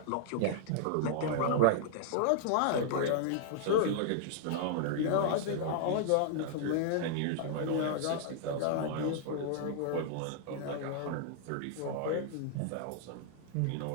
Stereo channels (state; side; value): different; both; correlation -0.01